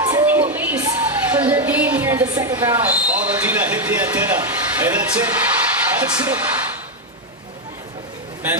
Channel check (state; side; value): normal; both; correlation 0.04